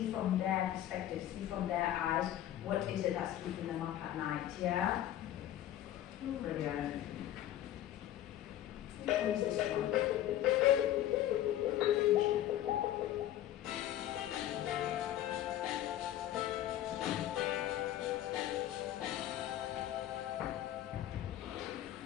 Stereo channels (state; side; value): quieter; right; 12.6 dB